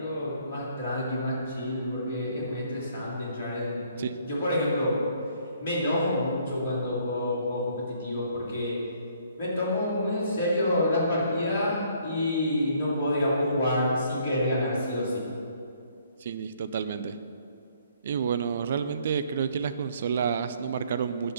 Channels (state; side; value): inverted; both; correlation -0.64